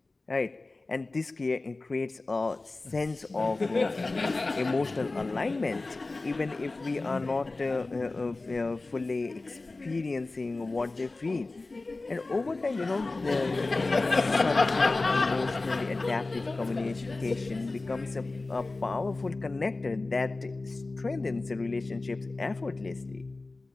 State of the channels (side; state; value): right; quieter; 3.3 dB